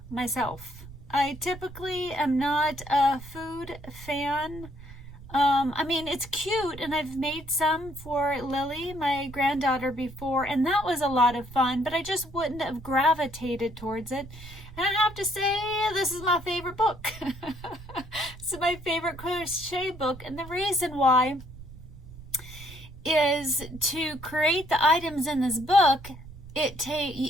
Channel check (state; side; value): noise; right; rumble, 16 dB below the sound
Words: myself. I typically am not a food fan. I mean, it's cute, and I've made some for Lily, my granddaughter, before, and that was a lot of fun, but I just wouldn't have gravitated towards it. And I have to say, this is my favorite book. It's my favorite crochet book, and the reason why is to create the items in this book,